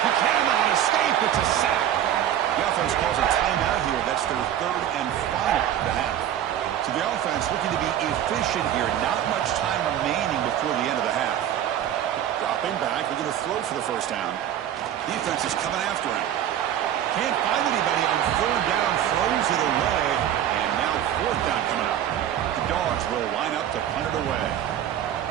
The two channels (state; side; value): quieter; left; 10.8 dB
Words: He cannot escape. It's a sack. The offense calls a timeout here. That's their 3rd and final of the half. So the offense looking to be efficient here. Not much time remaining before the end of the half. Dropping back, looking to throw for the first down. Defense is coming after him. Can't find anybody on third down, throws it away, and now fourth down coming up. The Dogs will line up to punt it away.